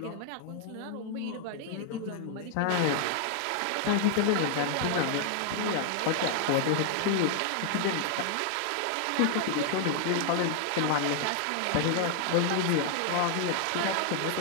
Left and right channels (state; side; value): different; both; correlation 0.00